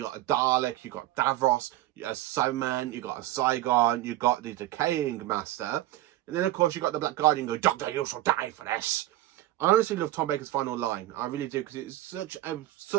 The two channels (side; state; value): left; quieter; 15.5 dB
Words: got a Dalek, you got Davros, you got a Cyberman, you got a Zygon, you got the Decaying Master. And then of course you got the Black Guardian going, "Doctor, you shall die for this." I honestly love Tom Baker's final line. I really do, because it's such a